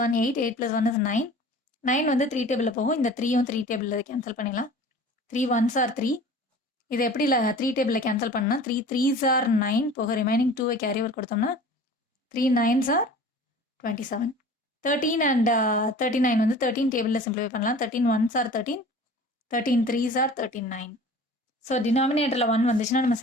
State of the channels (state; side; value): normal; both; correlation 0.43